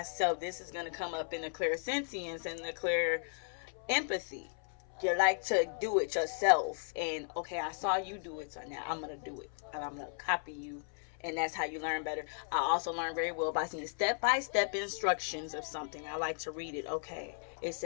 This is going to come up in the clairsensience and the clear empathy. You like to do it yourself, and okay, I saw you do it, so now I'm going to do it, and I'm going to copy you. And that's how you learn better. I also learn very well by seeing step-by-step instructions of something. I like to read it. Okay, it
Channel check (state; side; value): silent; right; 54 dB below the other